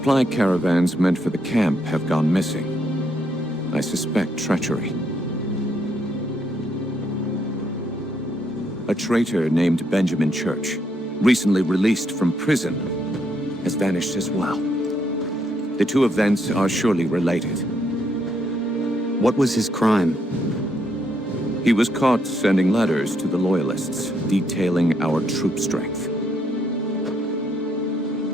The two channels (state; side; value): normal; both; correlation 0.75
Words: caravans meant for the camp have gone missing. I suspect treachery. A traitor named Benjamin Church, recently released from prison, has vanished as well. The two events are surely related. What was his crime? He was caught sending letters to the Loyalists, detailing our troop strength.